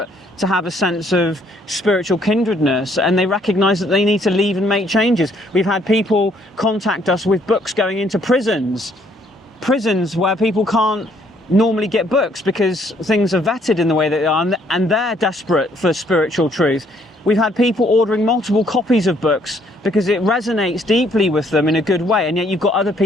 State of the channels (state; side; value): normal; both; correlation 0.66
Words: to have a sense of spiritual kindredness, and they recognise that they need to leave and make changes. We've had people contact us with books going into prisons where people can't normally get books because things are vetted in the way that they are, and they're desperate for spiritual truth. We've had people ordering multiple copies of books because it resonates deeply with them in a good way, and yet you've got other